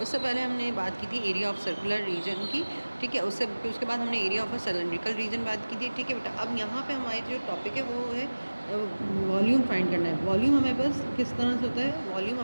उससे पहले हमने बात की थी एरिया ऑफ सर्कुलर रीजन की. ठीक है, उसके बाद हमने area of a cylindrical region बात की थी. ठीक है बेटा, अब यहाँ पे हमारे जो टॉपिक है वो है वॉल्यूम फाइंड करना है. वॉल्यूम हमारे पास किस तरह से होता है? वॉल्यूम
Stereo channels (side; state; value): both; inverted; correlation -1.00